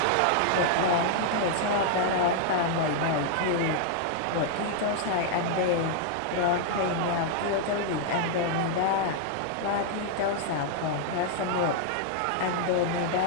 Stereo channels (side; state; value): both; different; correlation 0.00